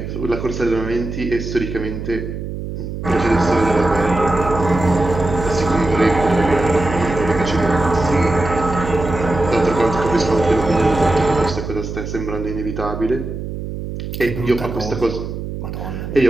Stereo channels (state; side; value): noise; right; hum, 7 dB below the sound